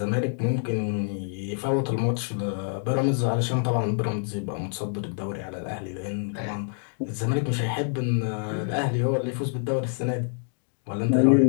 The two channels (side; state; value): right; silent; 61 dB below the other